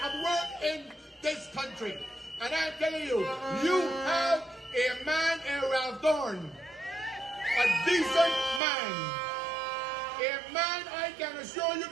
has worked in this country. And I'm telling you, you have a man in Ralph Thorne. A decent man. A man I can assure you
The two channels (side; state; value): left; drops out; at 8.6 s